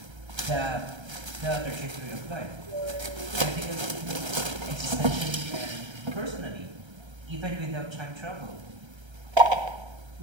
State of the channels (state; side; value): late; left; 1.3 ms